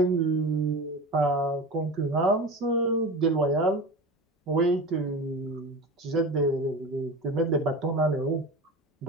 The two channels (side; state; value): both; normal; correlation 0.30